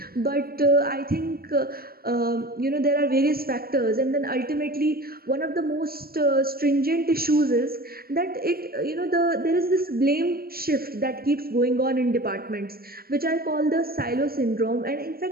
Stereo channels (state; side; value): late; left; 0.44 ms